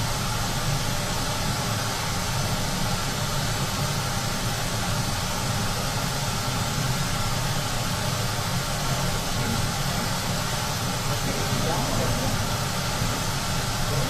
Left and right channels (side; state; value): both; identical; correlation 1.00